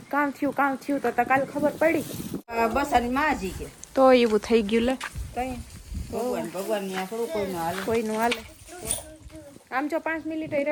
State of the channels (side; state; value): both; identical; correlation 1.00